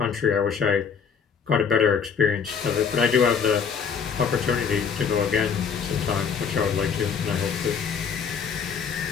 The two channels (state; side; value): quieter; right; 6.5 dB